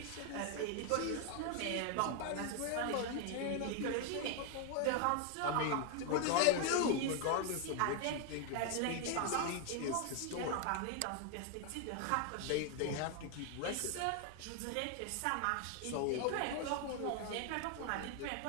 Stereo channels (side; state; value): both; different; correlation 0.01